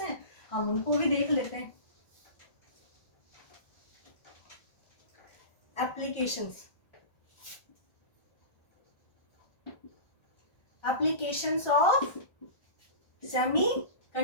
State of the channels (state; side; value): late; right; 1.5 ms